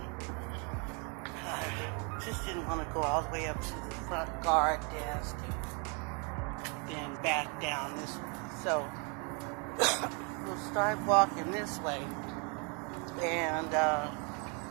Just didn't want to go all the way up to the front guard desk and then back down this way. So we'll start walking this way, and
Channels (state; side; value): quieter; left; 35.0 dB